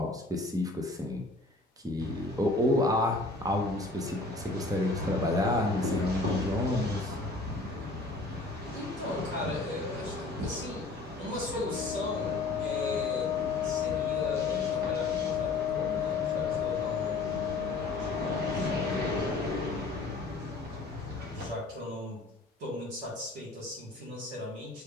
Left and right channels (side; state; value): right; quieter; 3.2 dB